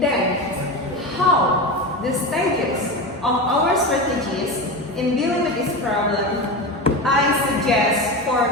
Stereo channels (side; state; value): both; normal; correlation 0.22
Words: how the stages of our strategies in dealing with this problem, I suggest